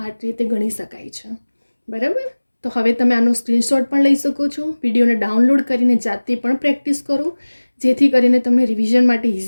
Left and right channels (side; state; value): both; inverted; correlation -1.00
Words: રીતે ગણી શકાય છે, બરાબર. તો હવે તમે આનો સ્ક્રીનશોટ પણ લઈ શકો છો, વિડીયોને ડાઉનલોડ કરીને જાતે પણ પ્રેક્ટિસ કરો, જેથી કરીને તમને રિવિઝન માટે